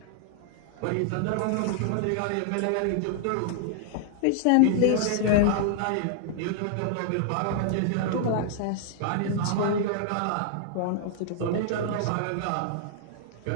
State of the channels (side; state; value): both; different; correlation -0.01